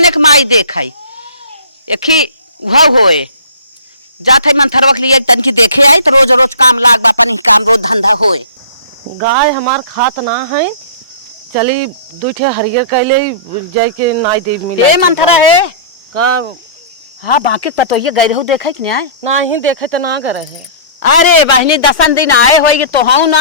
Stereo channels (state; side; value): inverted; both; correlation -0.44